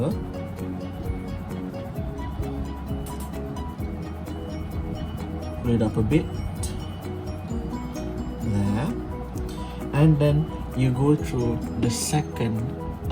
pull it up a bit, there, and then you go through the second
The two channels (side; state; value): both; identical; correlation 1.00